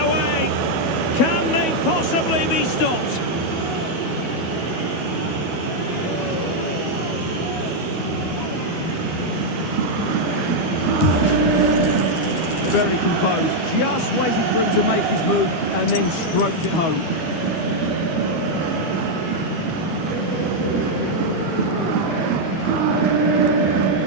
Can they possibly be stopped? Very composed, just waiting for him to make his move and then stroked it home.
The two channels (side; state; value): right; late; 12 ms